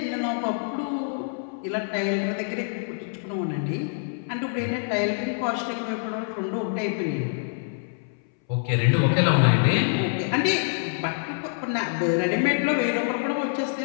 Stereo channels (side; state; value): right; silent; 61 dB below the other